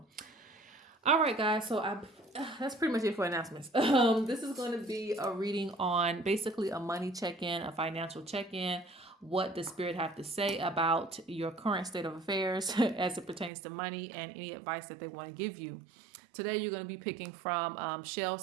All right, guys. So that's pretty much it for announcements. This is going to be a reading on basically a money check-in, a financial check-in. What does Spirit have to say about your current state of affairs as it pertains to money and any advice that they want to give you? Today, you're going to be picking from shell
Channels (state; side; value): drops out; left; at 13.5 s